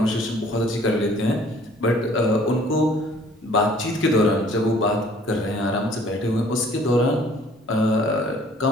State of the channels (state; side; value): normal; both; correlation 0.55